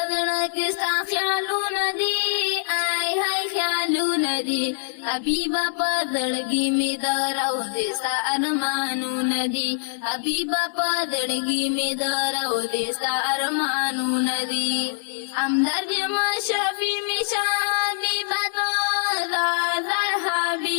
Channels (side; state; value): right; silent; 58 dB below the other